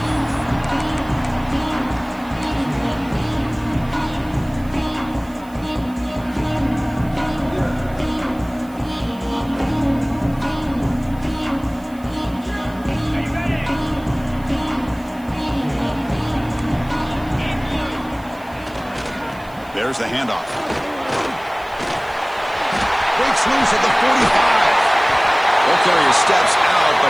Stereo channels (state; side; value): noise; right; hiss, 25 dB below the sound